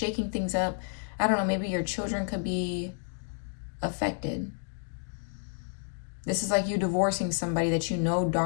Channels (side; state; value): right; silent; 58 dB below the other